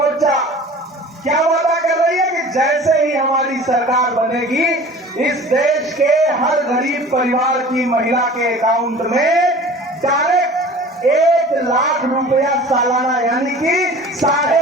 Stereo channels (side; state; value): both; normal; correlation 0.42